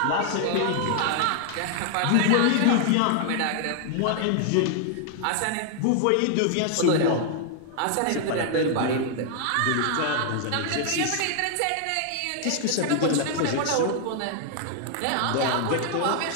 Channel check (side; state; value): both; different; correlation 0.00